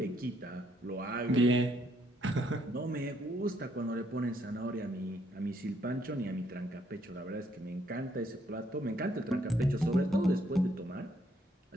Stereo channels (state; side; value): normal; both; correlation 0.70